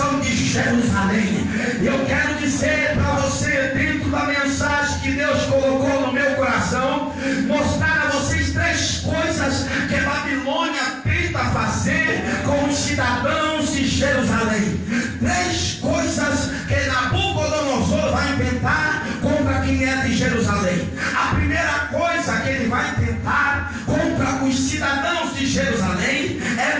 de Jerusalém. Eu quero dizer para você, dentro da mensagem que Deus colocou no meu coração, mostrar a vocês 3 coisas que a Babilônia tenta fazer com os cidadãos de Jerusalém. 3 coisas que Nabucodonosor vai tentar contra quem é de Jerusalém. A primeira coisa que ele vai tentar contra os cidadãos de Jerusalém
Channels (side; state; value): both; identical; correlation 1.00